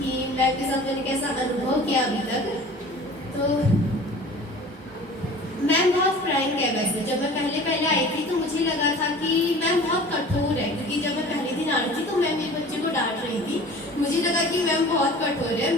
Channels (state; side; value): normal; both; correlation 0.43